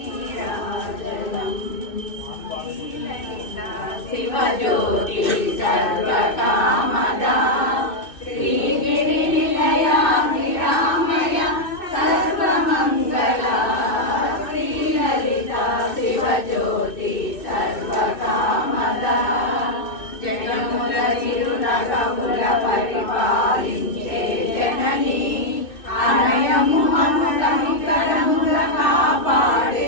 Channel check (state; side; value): late; right; 2.6 ms